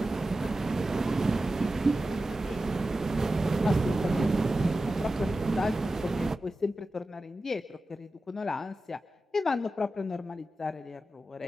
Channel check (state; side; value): normal; both; correlation 0.93